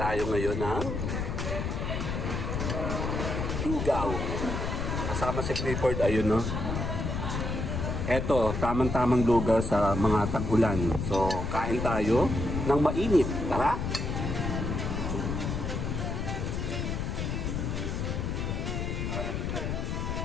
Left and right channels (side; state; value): left; noise; rumble, 2 dB below the sound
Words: ngayon ng lugaw. Kasama si Clifford, ayun, no? Eto, tamang-tamang lugaw sa mga tag-ulan. So, kain tayo ng mainit. Tara!